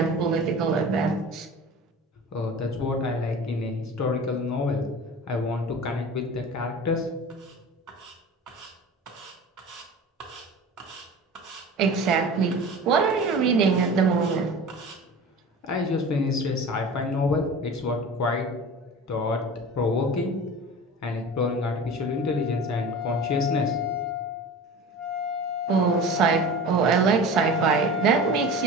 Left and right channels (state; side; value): normal; both; correlation 0.35